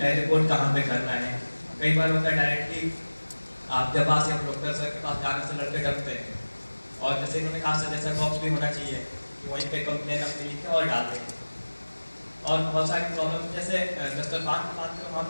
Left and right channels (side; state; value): both; inverted; correlation -1.00